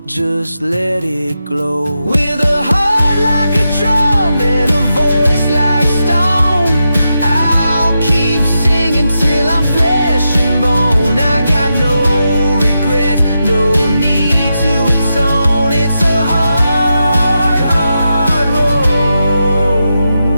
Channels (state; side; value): inverted; both; correlation -0.87